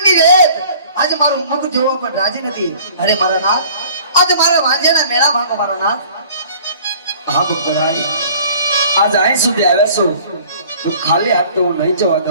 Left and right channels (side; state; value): both; inverted; correlation -0.50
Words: રેત આજ મારું મુખ જોવા પણ રાજી નથી. અરે મારા નાથ, આજ મારા વાંજ્યાના મેળા ભાગો મારા નાથ. હા ભક્તરાય, આજ અહીં સુધી આવ્યા છો તો ખાલી હાથ તો હું નહીં જવા